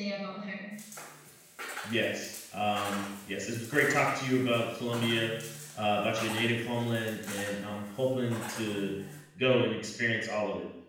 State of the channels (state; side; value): identical; both; correlation 1.00